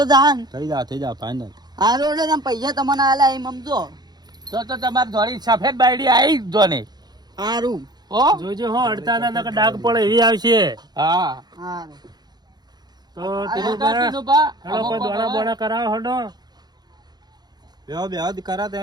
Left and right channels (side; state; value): left; late; 0.20 ms